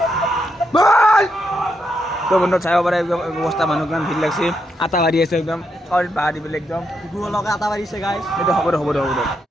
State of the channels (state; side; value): normal; both; correlation 0.81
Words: তো বন্ধু চাব পাৰে একদম ব্যৱস্থা, মানুহ কিমান ভিৰ লাগছে, আটা বাঢ়ি আছে একদম বাঢ়ি দি পেলাই একদম লগে আটা বাঢ়িছে গাইজ। এইটো হ'ব দে